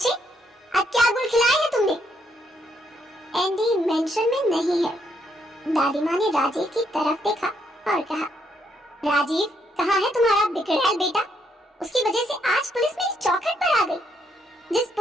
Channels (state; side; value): normal; both; correlation 0.74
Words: अब क्या गुल खिलाया है तुमने? एंडी मेंशन में नहीं है। दादी माँ ने राजीव की तरफ देखा और कहा, राजीव, कहाँ है तुम्हारा बिगड़ैल बेटा? उसकी वजह से आज पुलिस मेरी चौखट पर आ गई। जिस